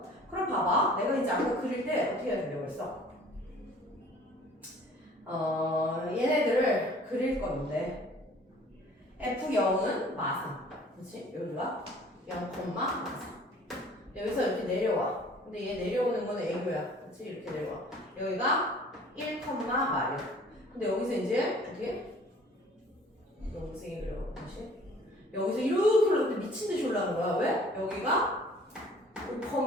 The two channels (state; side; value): normal; both; correlation 0.51